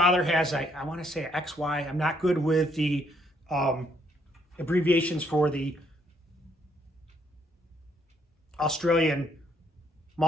has, I want to say XY. I'm not good with the abbreviations for the Australian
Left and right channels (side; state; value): both; normal; correlation 0.70